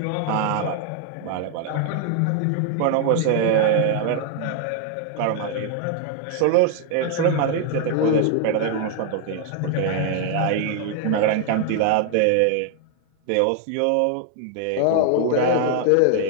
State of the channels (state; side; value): different; both; correlation 0.00